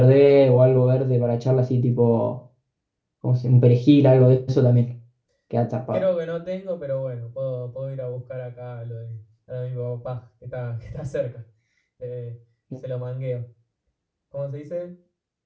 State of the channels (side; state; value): both; identical; correlation 1.00